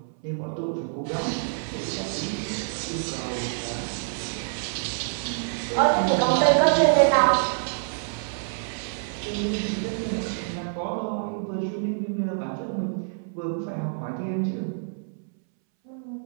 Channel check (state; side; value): silent; left; 60 dB below the other